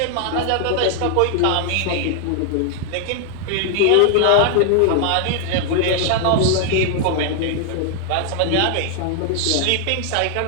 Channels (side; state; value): both; different; correlation 0.00